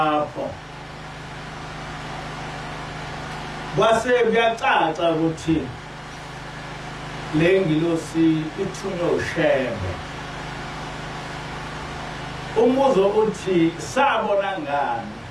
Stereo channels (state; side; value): identical; both; correlation 1.00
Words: kwase kuyacaca ukuthi le ngilosi ithunywe uShembe. Umbuzo uthi sabona ngani